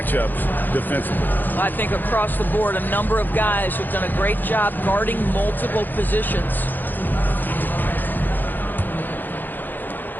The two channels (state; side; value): late; right; 0.088 ms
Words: defensively. I think across the board, a number of guys have done a great job guarding multiple positions.